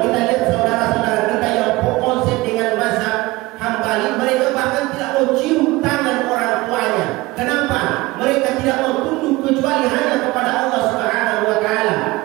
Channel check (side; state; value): left; quieter; 20.8 dB